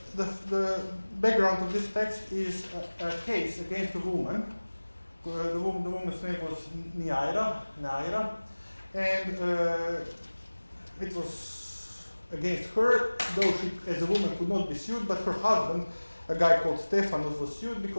background of this text is a case against a woman. The woman's name was Neaira, and it was against her, though she, as a woman, could not be sued, but her husband, a guy called Stephanus, was sued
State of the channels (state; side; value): inverted; both; correlation -1.00